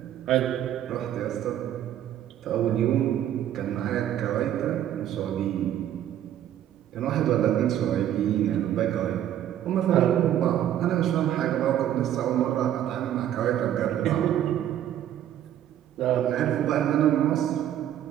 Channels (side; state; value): left; quieter; 11.3 dB